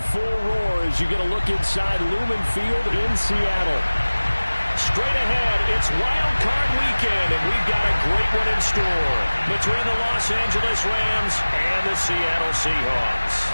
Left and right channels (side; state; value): both; inverted; correlation -1.00